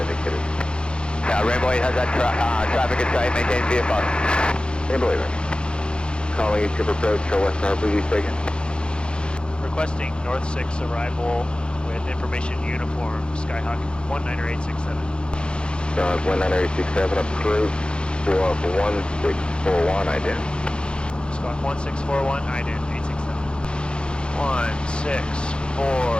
Yeah, Rainbow 8 has that traffic in sight, maintain VFR. Rainbow 8, calling you to approach west Harbor View taken. Requesting North 6 arrival with information uniform, Skyhawk 19867. Skyhawk 19867 approach. 1641 ident. Squawk 1641, ident 867.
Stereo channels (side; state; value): right; late; 0.053 ms